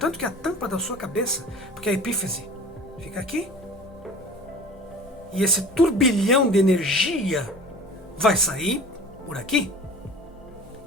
que a tampa da sua cabeça, porque a epífise fica aqui, e esse turbilhão de energia vai sair por aqui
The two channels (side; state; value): both; normal; correlation 0.42